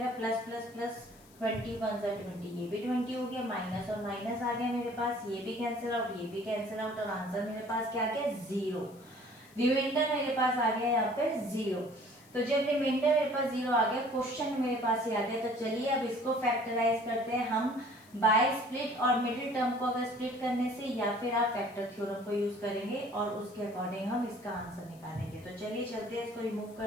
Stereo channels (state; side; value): noise; left; hiss, 26 dB below the sound